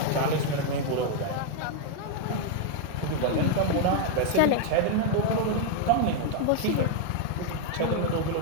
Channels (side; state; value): both; different; correlation 0.00